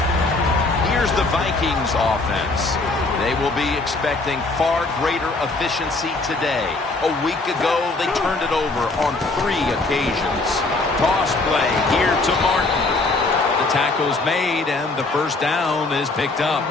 Here's the Vikings offense. They will be expecting far greater efficiency today. A week ago, they turned it over on 3 occasions. Toss play here to Martin. The tackle's made, and the first down is picked up.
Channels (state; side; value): quieter; right; 3.3 dB